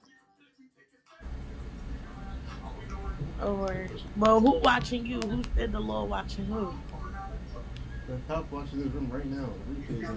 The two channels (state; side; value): identical; both; correlation 1.00